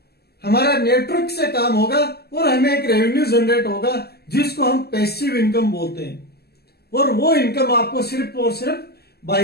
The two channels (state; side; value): late; right; 0.46 ms